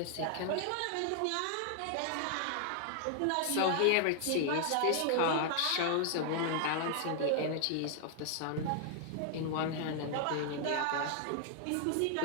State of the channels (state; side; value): different; both; correlation 0.00